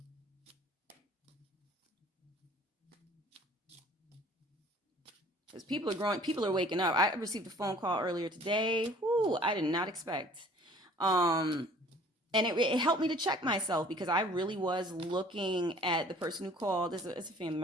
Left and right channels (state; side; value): normal; both; correlation 0.52